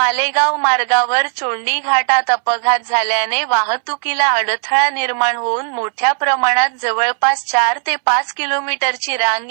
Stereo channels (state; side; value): silent; left; 67 dB below the other